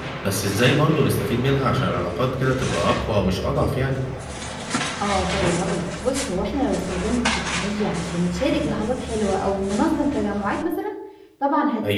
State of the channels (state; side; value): identical; both; correlation 1.00